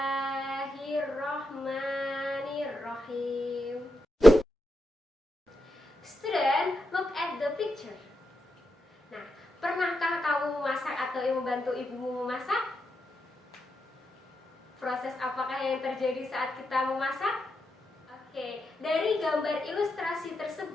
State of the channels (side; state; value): both; normal; correlation 0.86